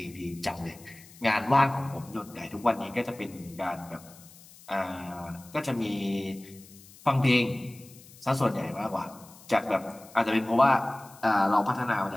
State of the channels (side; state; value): left; noise; hiss, 22 dB below the sound